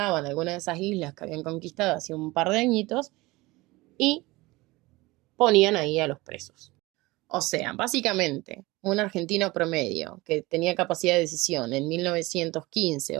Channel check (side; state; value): left; quieter; 21.3 dB